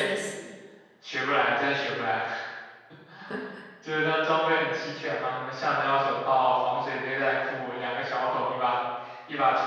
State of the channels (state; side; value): identical; both; correlation 1.00